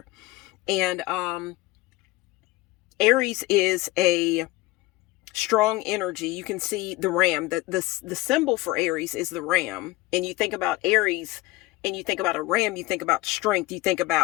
And Aries is a strong energy. You can see the ram. The symbol for Aries is the ram. And you think about Aries and you think about a ram, you think about strength, you think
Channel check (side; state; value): right; quieter; 19.1 dB